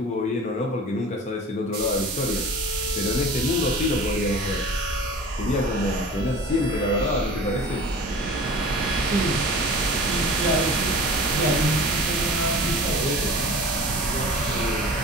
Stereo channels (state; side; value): normal; both; correlation 0.39